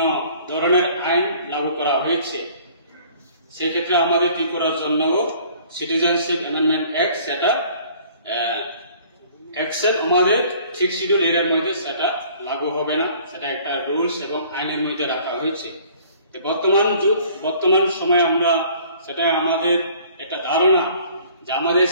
ধরনের আইন লাগু করা হয়েছে, সেক্ষেত্রে আমাদের ত্রিপুরার জন্য সিটিজেনশিপ অ্যামেন্ডমেন্ট অ্যাক্ট সেটা অ্যাকসেপ্ট আমাদের 6 শিডিউল এরিয়ার মধ্যে সেটা লাগু হবে না, সেটা একটা রুলস এবং আইনের মধ্যে রাখা হয়েছে। বর্তমান সময়ে আমরা সেটা আমাদের একটা ধারণা যে আমাদের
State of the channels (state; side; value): inverted; both; correlation -0.53